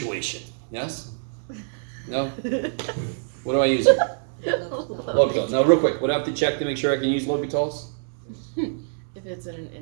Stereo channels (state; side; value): silent; left; digital silence